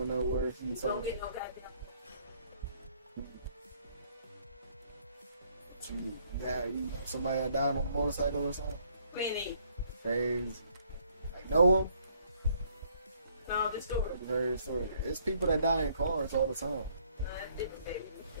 nowhere. You don't get no goddamn. You know somebody that died on a motorcycle or something? Plenty. Crazy. Like know them? No, the story. Very story. It's people that die in cars all the time. No, that's different, baby.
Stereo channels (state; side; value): inverted; both; correlation -0.66